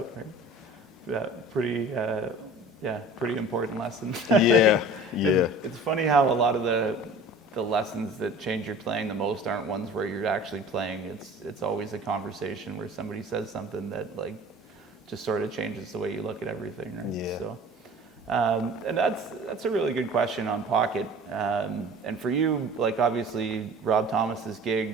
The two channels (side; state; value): both; normal; correlation 0.43